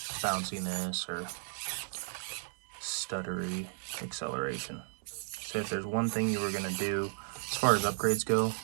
bounciness or stuttery acceleration. So if there's one thing you were going to do as far as upgrades go,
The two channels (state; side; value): silent; left; 55 dB below the other